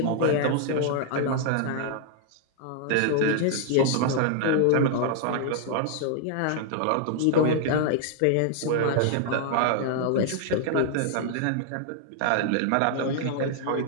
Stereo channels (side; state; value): both; different; correlation -0.01